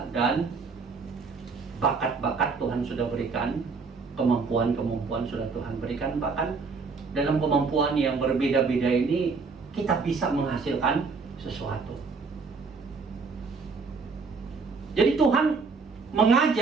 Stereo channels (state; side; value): quieter; left; 4.7 dB